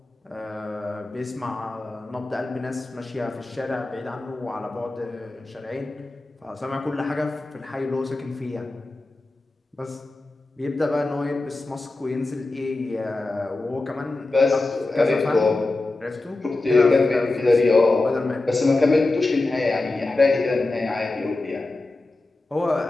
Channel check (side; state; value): right; quieter; 3.1 dB